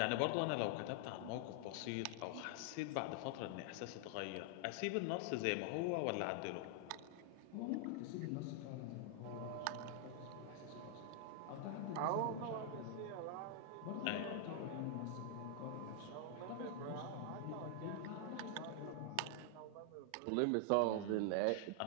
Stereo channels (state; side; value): different; both; correlation 0.00